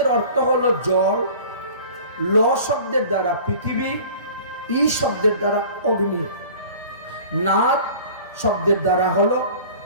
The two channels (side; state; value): both; inverted; correlation -0.44